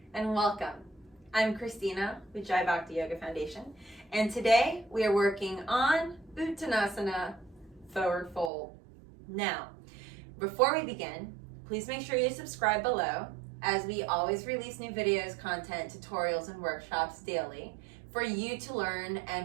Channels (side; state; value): left; drops out; at 8.5 s